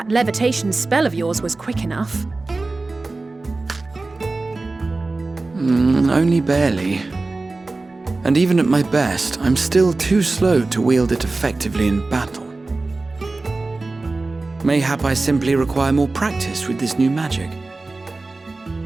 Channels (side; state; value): left; quieter; 3.4 dB